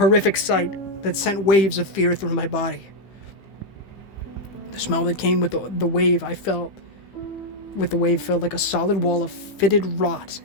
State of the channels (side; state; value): right; late; 15 ms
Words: sight that sent waves of fear through my body. The smell that came with the wave felt like a solid wall of fetid rot,